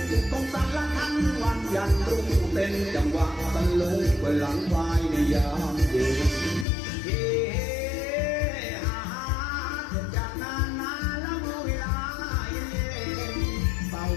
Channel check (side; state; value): right; drops out; at 6.7 s